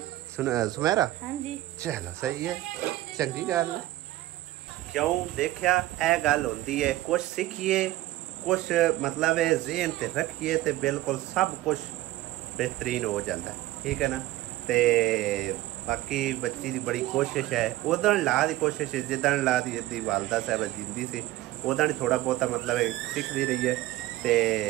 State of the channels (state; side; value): quieter; left; 16.4 dB